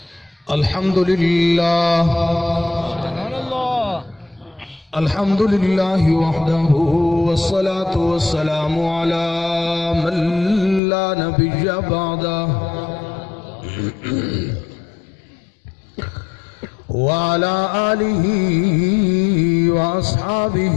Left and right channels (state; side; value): drops out; right; at 10.8 s